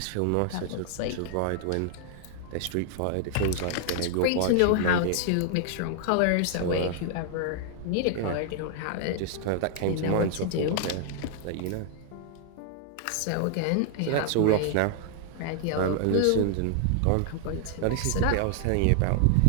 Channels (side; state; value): both; different; correlation -0.01